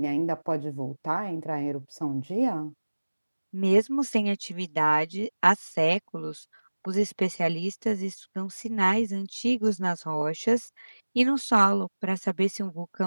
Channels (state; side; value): inverted; both; correlation -1.00